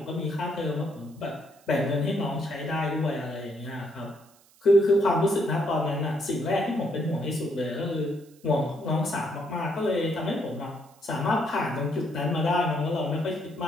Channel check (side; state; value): right; noise; hiss, 29 dB below the sound